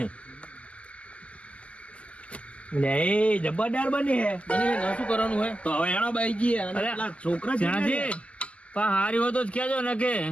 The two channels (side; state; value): right; late; 0.061 ms